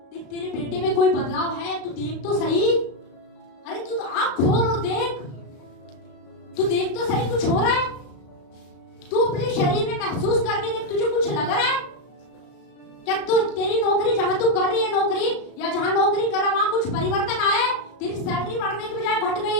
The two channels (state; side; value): late; right; 35 ms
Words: देख तेरे बेटे में कोई बदलाव है, तू देख तो सही, अरे तू तो आंख खोल और देख, तू देख तो सही कुछ हो रहा है, तू अपने शरीर में महसूस करके देख, तुझे कुछ लग रहा है क्या? तू, तेरी नौकरी जहां तू कर रही है नौकरी, या जहां नौकरी कर रहा वहां कुछ परिवर्तन आया है? तेरी सैलरी बढ़ने की बजाय घट